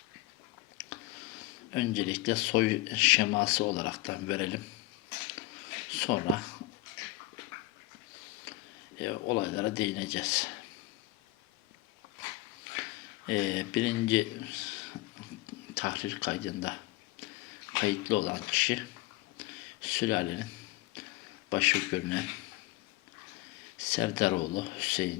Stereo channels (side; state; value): right; quieter; 17.3 dB